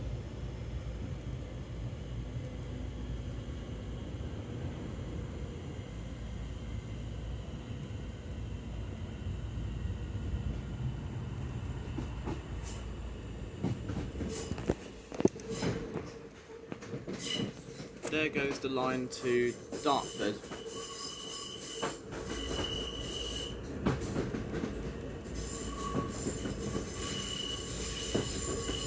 There goes the line to Dartford.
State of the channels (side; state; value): both; identical; correlation 1.00